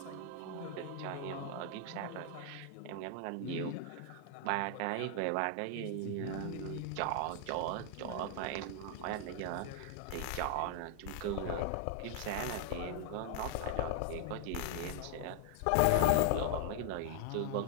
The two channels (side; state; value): both; different; correlation 0.00